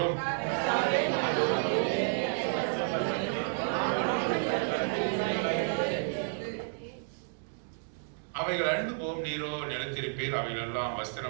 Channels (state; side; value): silent; left; digital silence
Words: அவைகள் அழிந்து போம், நீரோ நிலைத்திருப்பீர். அவைகள் எல்லாம்